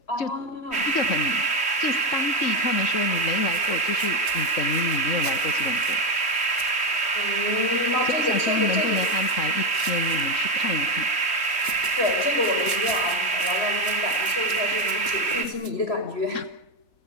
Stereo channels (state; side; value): late; right; 3.4 ms